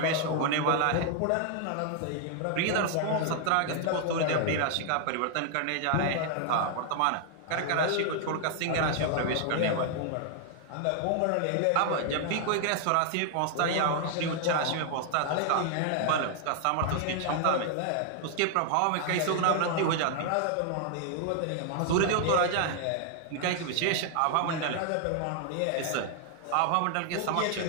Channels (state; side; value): different; both; correlation 0.00